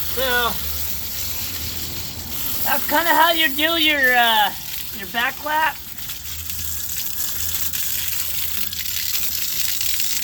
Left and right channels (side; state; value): both; identical; correlation 1.00